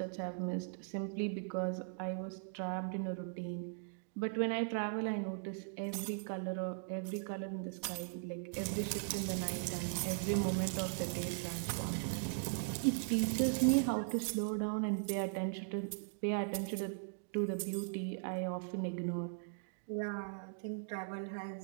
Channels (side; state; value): left; silent; digital silence